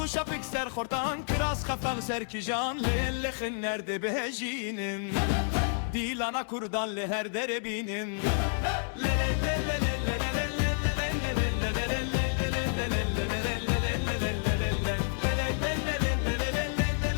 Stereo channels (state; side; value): silent; right; digital silence